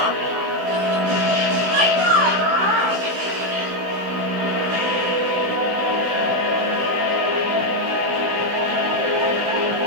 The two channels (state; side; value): late; left; 15 ms